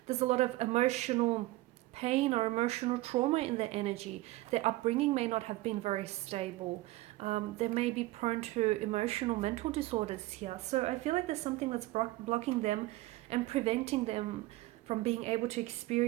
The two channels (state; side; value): quieter; left; 18.6 dB